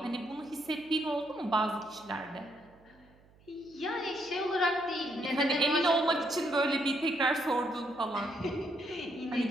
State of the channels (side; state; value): right; noise; hum, 28 dB below the sound